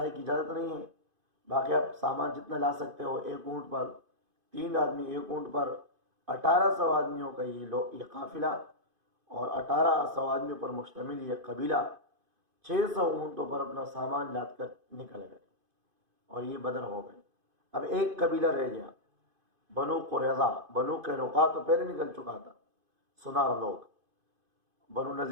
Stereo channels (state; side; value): late; left; 2.5 ms